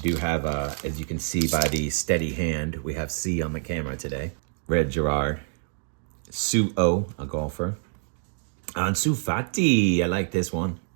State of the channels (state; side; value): silent; left; digital silence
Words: have, as you can see by the steady hand, we have C on the camera today. Red Gerard. Sue O, a golfer. Ansu Fati, I like this one.